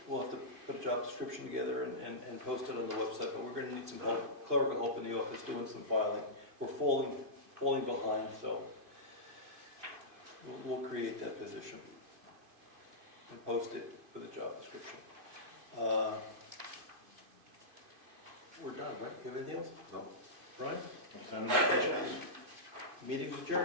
We'll have to put a job description together and post it on the website, but we're going to need some help, clerical help in the office doing some filing. We're falling behind, so we'll create that position and post it for the job description. We're done, right? You have anything else? No. Brian? Send the checks. Meeting's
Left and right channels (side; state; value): left; late; 2.5 ms